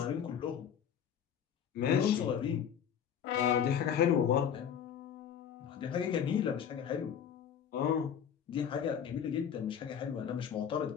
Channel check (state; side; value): quieter; right; 8.4 dB